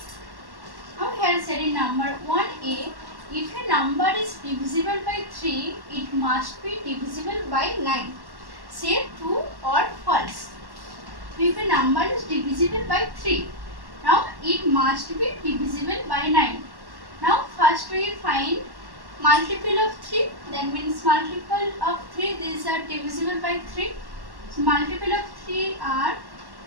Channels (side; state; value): left; late; 1.1 ms